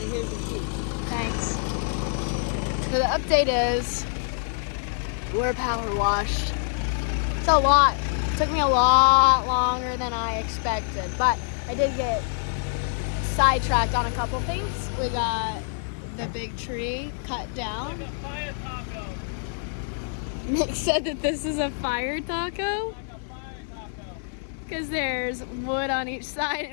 here's the sheet. Thanks. So the update is we're power washed. It's a lot. It took me a lot longer than I expected, but I did get sidetracked on a couple things. We got the big tree cut down. Like a fire taco. Nick said that this is a fire taco Like a fire taco. because there's wood on each side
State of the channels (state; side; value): silent; right; digital silence